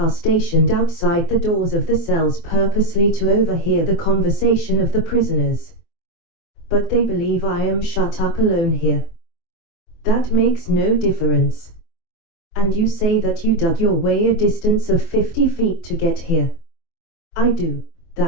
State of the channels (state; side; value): late; right; 24 ms